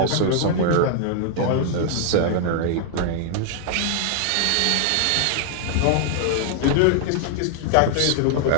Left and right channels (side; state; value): both; different; correlation 0.00